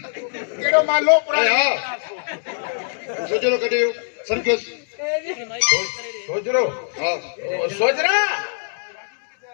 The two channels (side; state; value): right; silent; digital silence